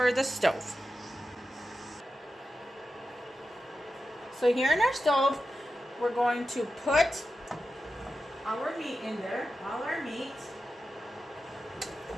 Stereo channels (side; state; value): both; normal; correlation 0.91